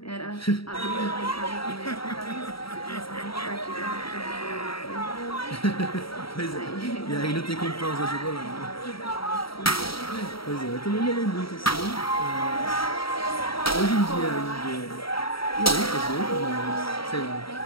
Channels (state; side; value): late; right; 0.75 ms